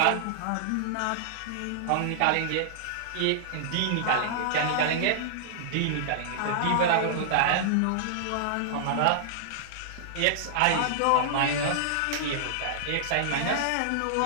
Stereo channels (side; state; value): both; different; correlation -0.01